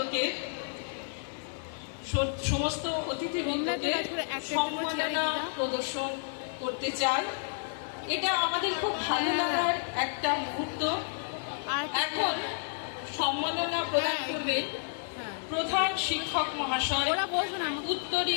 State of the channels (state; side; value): silent; right; digital silence